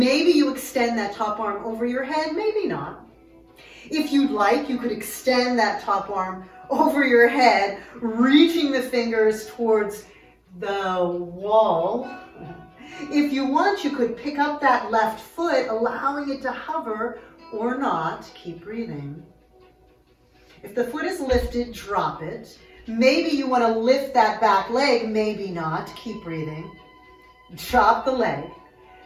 you extend that top arm over your head, maybe not. If you'd like, you could extend that top arm over your head, reaching the fingers towards the wall. If you want, you could pick up that left foot, allowing it to hover or not. Keep breathing. If the foot is lifted, drop it. Maybe you want to lift that back leg, maybe not. Keep breathing. Drop the leg.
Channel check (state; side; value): identical; both; correlation 1.00